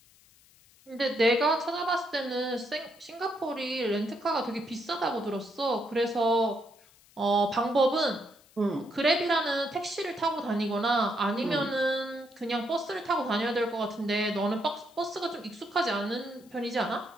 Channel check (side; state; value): left; noise; hiss, 28 dB below the sound